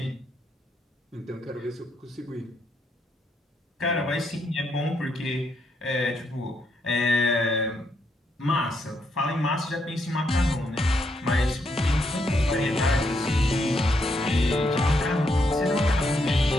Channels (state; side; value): normal; both; correlation 0.77